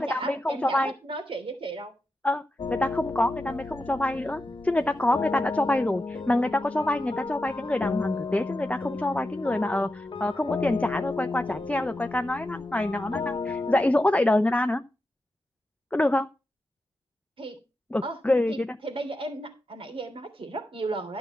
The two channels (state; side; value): normal; both; correlation 0.88